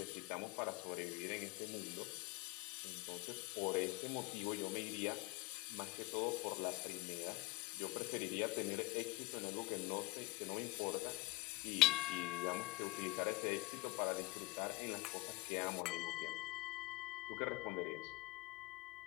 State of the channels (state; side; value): quieter; right; 22.8 dB